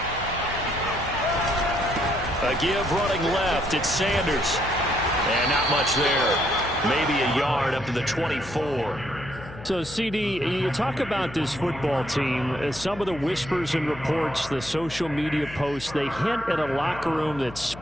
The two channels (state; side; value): noise; left; hum, 15 dB below the sound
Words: 8. A give running left. It's Sanders. And not much there. Maybe a yard up to the 24. So, CD, you talk about this football team. Some of the whispers and reports, the social media posts, they hint at a locker room that's